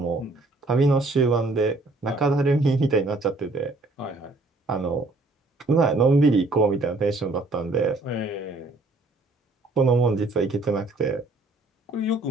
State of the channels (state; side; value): quieter; left; 3.1 dB